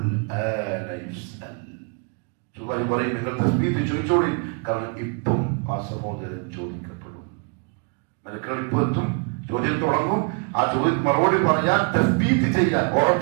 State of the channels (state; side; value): quieter; left; 37.2 dB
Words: പറയും നിങ്ങൾ തസ്ബീഹ് ചോദിച്ചോളി, കാരണം ഇപ്പം ആ സഹോദരൻ ചോദിക്കപ്പെടും. മലക്കുകൾ ഇപ്പൊ എത്തും, ചോദ്യം തുടങ്ങും. ആ ചോദ്യം മറുപടി പറയാൻ, തസ്ബീഹ് ചെയ്യാൻ,